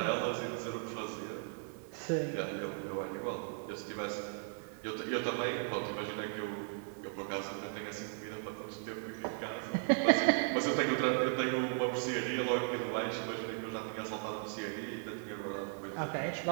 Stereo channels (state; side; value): silent; left; 53 dB below the other